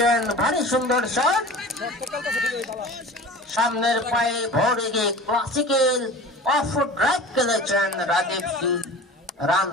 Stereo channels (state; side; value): normal; both; correlation 0.38